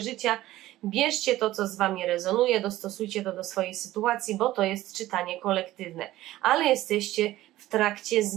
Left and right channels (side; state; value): left; quieter; 15.6 dB